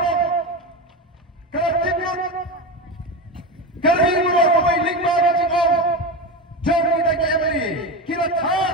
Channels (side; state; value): both; normal; correlation 0.20